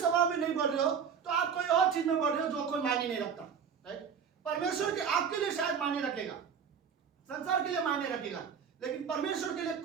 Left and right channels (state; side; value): quieter; left; 7.0 dB